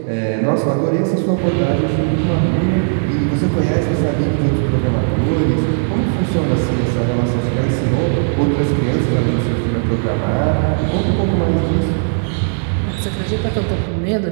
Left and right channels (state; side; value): silent; left; digital silence